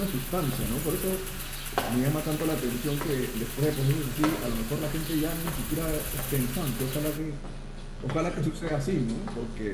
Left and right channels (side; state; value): both; identical; correlation 1.00